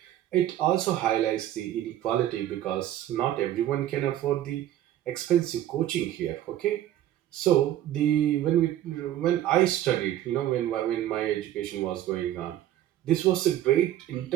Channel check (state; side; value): quieter; left; 12.6 dB